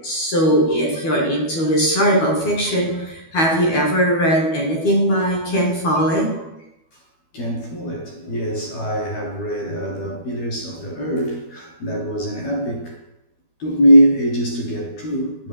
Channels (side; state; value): right; late; 12 ms